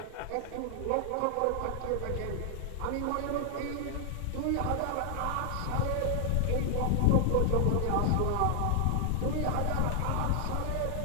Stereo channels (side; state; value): both; different; correlation 0.00